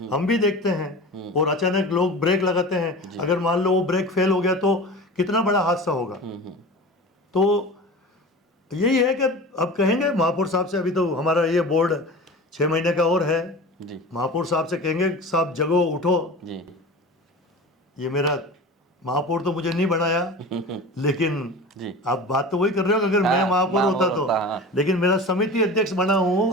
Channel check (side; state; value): both; normal; correlation 0.34